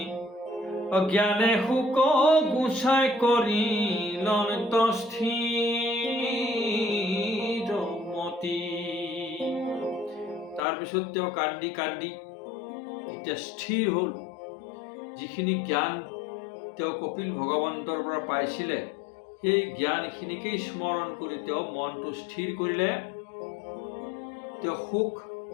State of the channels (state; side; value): drops out; right; at 10.6 s